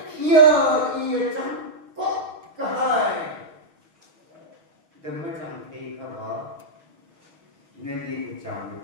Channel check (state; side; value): late; left; 6.3 ms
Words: yêu chẳng có cái hai đừng có chẳng thấy cái đó nên đi cái chẳng